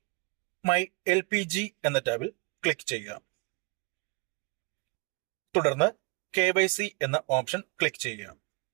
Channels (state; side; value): quieter; left; 29.3 dB